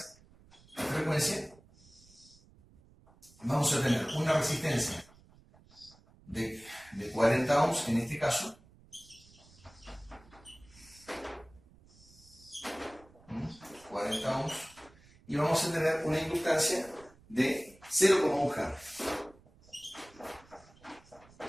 de frecuencia. Vamos a tener una resistencia de 40 ohms en este caso, y vamos a tener una inductancia de 0,1 Hz.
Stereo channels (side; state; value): right; noise; rumble, 26 dB below the sound